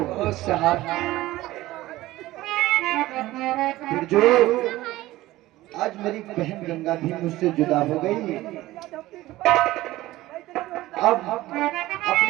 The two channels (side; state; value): left; quieter; 17.0 dB